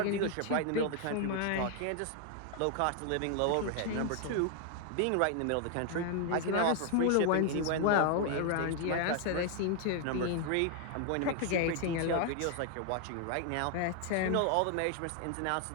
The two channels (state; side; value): different; both; correlation 0.00